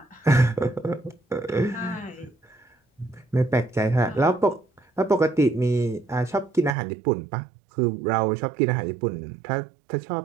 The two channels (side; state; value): left; drops out; at 6.8 s